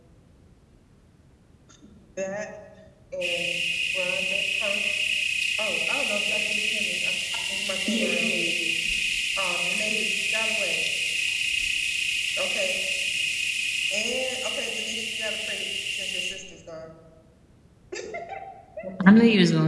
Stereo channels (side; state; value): both; identical; correlation 1.00